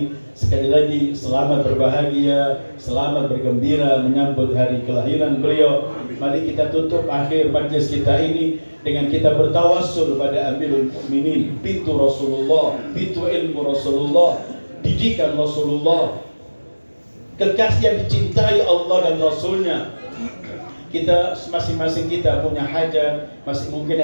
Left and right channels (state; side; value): inverted; both; correlation -1.00